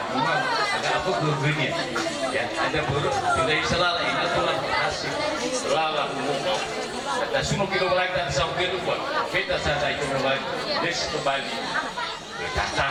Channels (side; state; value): both; identical; correlation 1.00